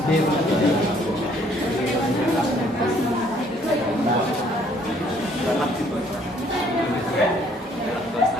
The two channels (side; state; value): both; normal; correlation 0.63